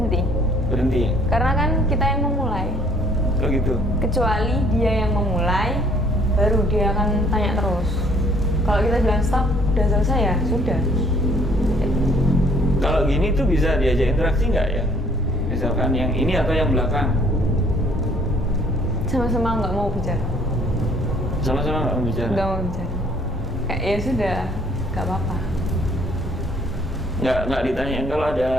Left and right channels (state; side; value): normal; both; correlation 0.59